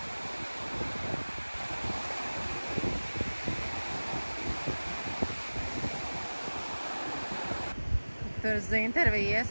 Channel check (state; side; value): inverted; both; correlation -1.00